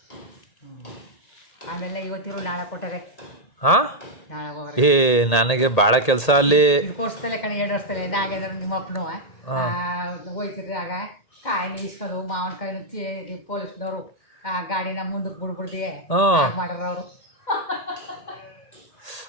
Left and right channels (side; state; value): right; late; 1.8 ms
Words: ಆಮೇಲೆ ಇವತ್ತಿರು ನಾಳೆ ಕೊಟ್ಟರೆ ಹಾ ನಾಳೆ ಹೋಗೋದು. ಏ ನನಗೆ ಭಾಳ ಕೆಲಸ ಅಲ್ಲಿ. ಕೋರ್ಸ್ತಲೆ ಕಣೆ 2 ವರ್ಷದಲ್ಲೇ ನಾಗೇಂದ್ರ ನಿಮ್ಮ ಅಪ್ಪನು ಹೋಯ್ತಿರ್ರಿ ಆಗ ಕಾಯಿನ ಇಸ್ಕೊಂಡು ಮಾವಿನಕಾಯಿನ ಪೊಲೀಸ್ನವರು ಆ ಗಾಡಿನ ಮುಂದಕ್ಕೆ ಬಿಡ್ಬಿಡ್ದಿ ಮಾಡ್ರ ಅವರು.